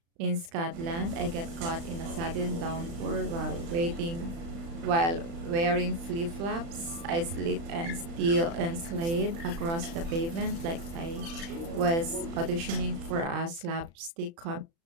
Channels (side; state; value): left; late; 36 ms